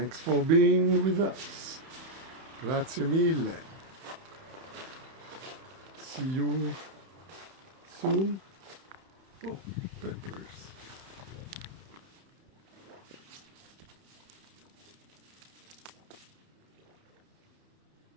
for being with us. Grazie mille. See you soon. Oh, peppers.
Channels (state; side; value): late; left; 31 ms